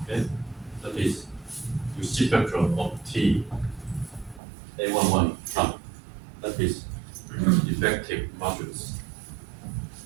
Okay, that is reciprocal of T A11 from. That is effective matrix.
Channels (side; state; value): left; drops out; at 4.4 s